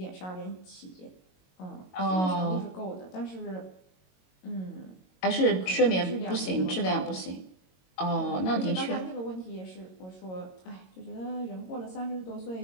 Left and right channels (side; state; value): right; late; 22 ms